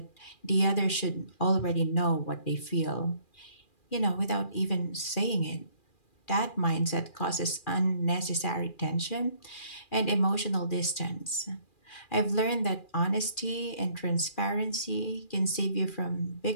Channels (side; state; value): right; late; 2.4 ms